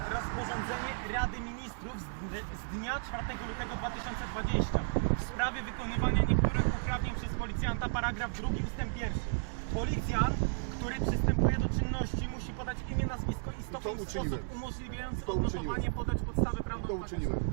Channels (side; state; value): left; silent; digital silence